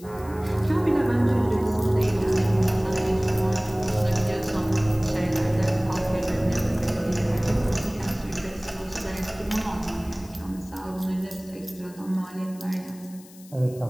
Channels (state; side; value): noise; left; hiss, 22 dB below the sound